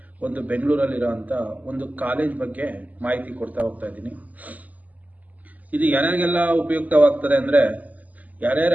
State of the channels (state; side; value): late; left; 0.078 ms